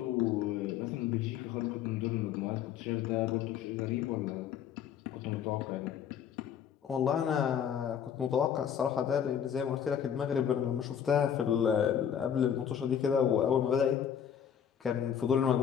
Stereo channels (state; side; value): quieter; right; 8.7 dB